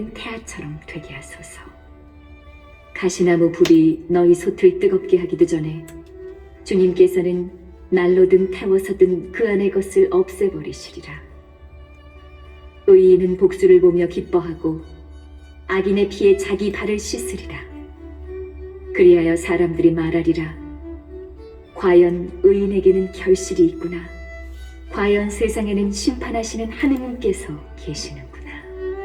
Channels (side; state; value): both; identical; correlation 1.00